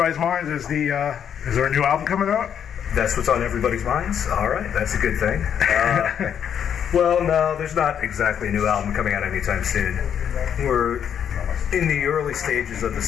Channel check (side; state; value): right; quieter; 8.6 dB